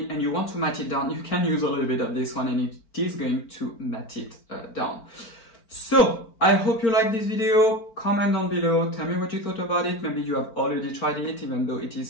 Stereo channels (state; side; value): late; right; 4.4 ms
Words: and you want to matte it down, you can use a little bit of this one and it is going to matte it down. So I hope you like this video. Comment down below, tell me what you thought about it. Maybe you have already tried it, even though it